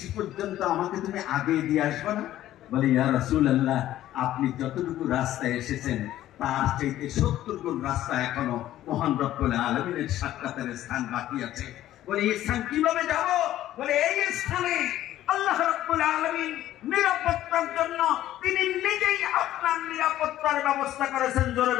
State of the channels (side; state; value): right; quieter; 13.4 dB